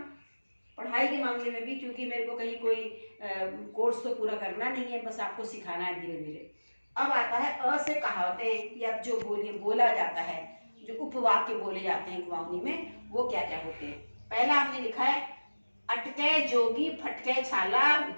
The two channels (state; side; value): inverted; both; correlation -1.00